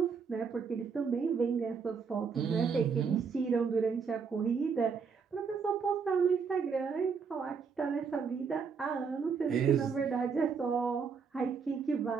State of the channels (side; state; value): left; quieter; 5.8 dB